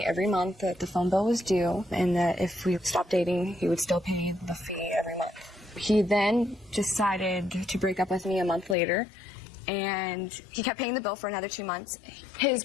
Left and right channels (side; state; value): right; drops out; at 8.8 s